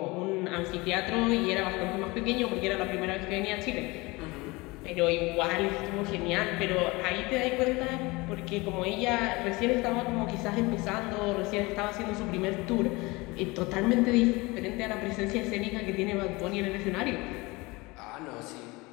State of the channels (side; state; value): right; quieter; 23.7 dB